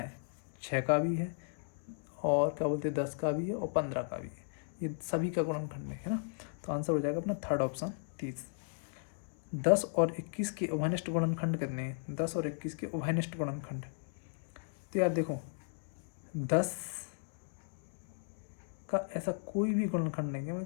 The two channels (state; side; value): silent; right; 54 dB below the other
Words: 6 का भी है, और क्या बोलते हैं 10 का भी है, और 15 का भी है। ये सभी का गुणनखंड है ना। तो आंसर हो जाएगा अपना थर्ड ऑप्शन 30। 10 और 21 के उभयनिष्ठ गुणनखंड कितने हैं? 10 और 21 के उभयनिष्ठ गुणनखंड। तो यार देखो 10 का ऐसा कोई भी गुणनखंड नहीं है,